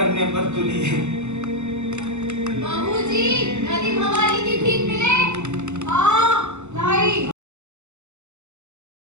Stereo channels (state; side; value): late; left; 0.83 ms